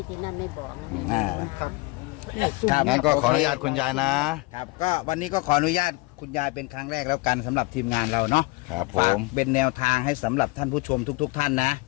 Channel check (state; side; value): quieter; right; 23.6 dB